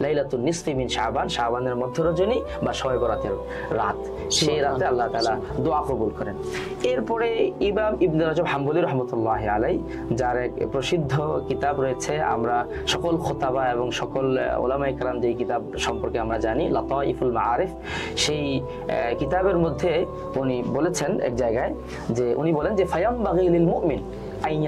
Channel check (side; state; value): both; identical; correlation 1.00